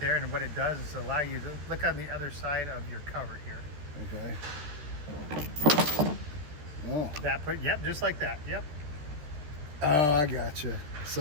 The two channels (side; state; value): left; late; 13 ms